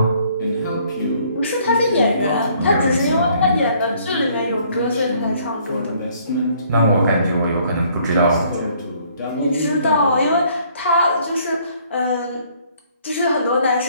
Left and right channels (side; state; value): both; inverted; correlation -0.62